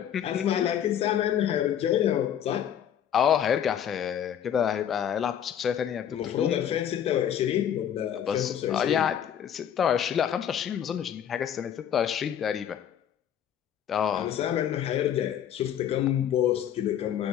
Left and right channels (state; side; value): quieter; right; 9.5 dB